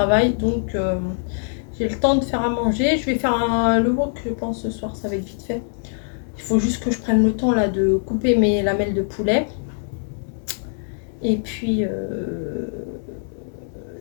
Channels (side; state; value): right; silent; 64 dB below the other